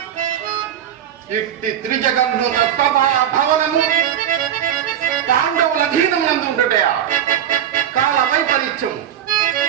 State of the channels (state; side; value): quieter; left; 10.0 dB